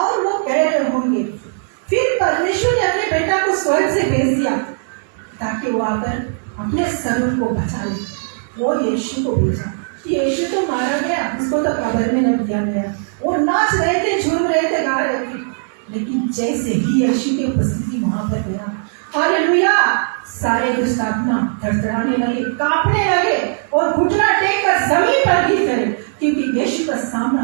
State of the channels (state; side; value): silent; left; digital silence